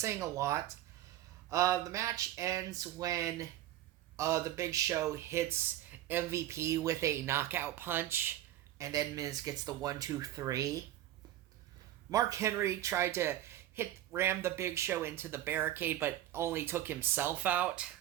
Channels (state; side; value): quieter; left; 13.1 dB